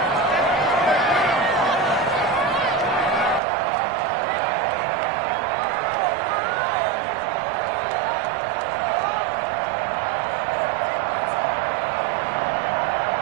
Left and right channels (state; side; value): drops out; left; at 3.4 s